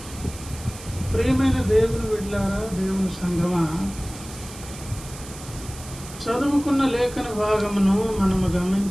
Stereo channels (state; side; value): noise; right; hiss, 15 dB below the sound